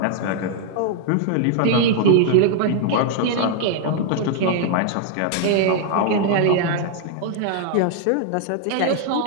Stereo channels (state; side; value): different; both; correlation 0.00